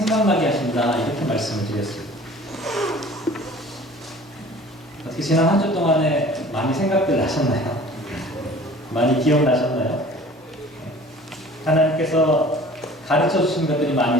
하신다. 이렇게 말씀을 드렸습니다. 어떻게 지난 한 주 동안에 많이 생각들 나셨나요? 많이 기억나셨나요? 하나님께서 가르쳐 주신 것들이 많이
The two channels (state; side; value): normal; both; correlation 0.47